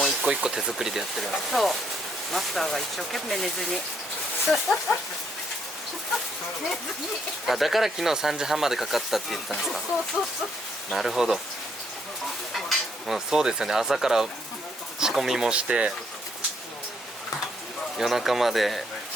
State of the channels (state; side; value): normal; both; correlation 0.72